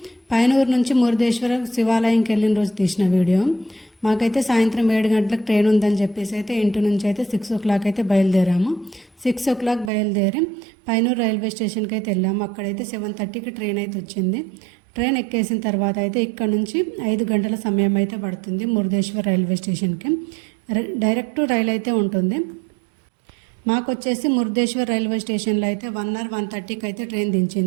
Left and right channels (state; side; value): drops out; left; at 9.9 s